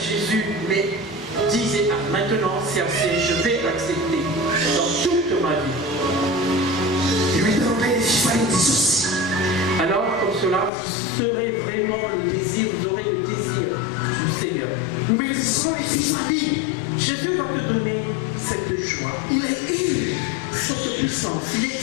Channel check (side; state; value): right; drops out; at 10.7 s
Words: mais disez maintenant c'est assez, je vais l'accepter dans toute ma vie. Alors comme cela, vous serez vraiment le désir, vous aurez le désir du Seigneur. Jésus va te donner cette joie. Il est cette puissance. Il est